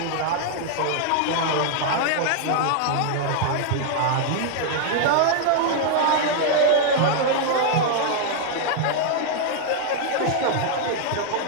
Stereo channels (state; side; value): different; both; correlation 0.00